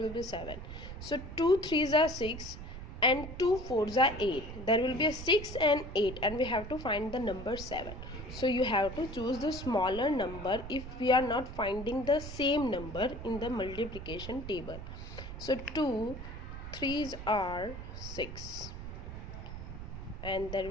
be 7. So 2 threes are 6 and 2 fours are 8. There will be a 6 and 8, and we have to find the number 7. So you have to choose the smaller number if we are not finding the same number in the multiplication table. So 2 threes are 6, and there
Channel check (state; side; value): noise; right; rumble, 10 dB below the sound